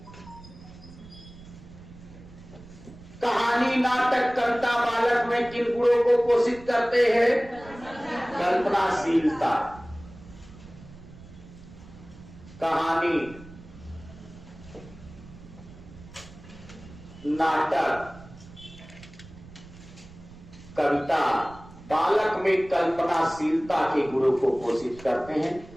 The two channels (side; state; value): right; noise; rumble, 19 dB below the sound